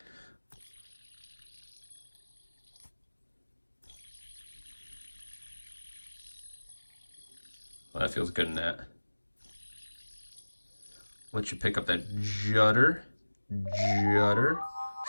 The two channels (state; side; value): inverted; both; correlation -1.00